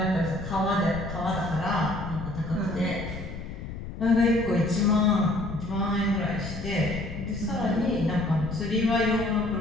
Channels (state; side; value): noise; left; rumble, 9 dB below the sound